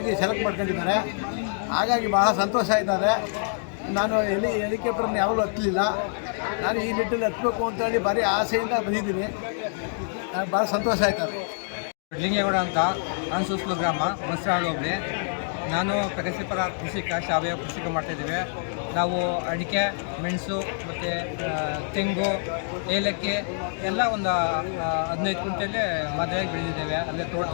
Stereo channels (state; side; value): silent; right; digital silence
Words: ಸೆಲೆಕ್ಟ್ ಮಾಡ್ಕೊಂಡಿದ್ದಾರೆ. ಹಾಗಾಗಿ ಭಾಳ ಸಂತೋಷ ಆಯ್ತದೆ. ನಾನು ಹೆಲಿಕಾಪ್ಟರ್ನ ಯಾವಾಗಲೂ ಹತ್ತಲಿಲ್ಲ. ನಾನು ಈ ನಿಟ್ಟಿನಲ್ಲಿ ಹತ್ತಬೇಕು ಅಂತೇಳಿ ಭಾರಿ ಆಸೆಯಿಂದ ಬಂದಿದ್ದೀನಿ. ನನಗೆ ಭಾಳ ಸಂತೋಷ ಆಯ್ತದೆ. ಲಿಂಗೇಗೌಡ ಅಂತ ಅನ್ಸೂಸ್ಲು ಗ್ರಾಮ, ಬಸರಾಳು ಹೋಬಳಿ. ನಾನು ಪ್ರಗತಿಪರ ಕೃಷಿಕ, ಸಾವಯವ ಕೃಷಿಕ ಮಾಡ್ತಾಯಿದ್ದೀವಿ. ನಾವು ಅಡಿಕೆ, ಮೆಣಸು ಮತ್ತು ತೆಂಗು, ಏಲಕ್ಕಿ ಎಲ್ಲ ಒಂದು 15 ಕ್ವಿಂಟಲ್ಲಿ ಮದುವೆಗೆ ಬೆಳೆದಿದ್ದೇವೆ. ಅಲ್ಲೇ